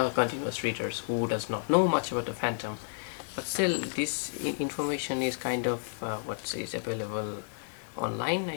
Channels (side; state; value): right; silent; 57 dB below the other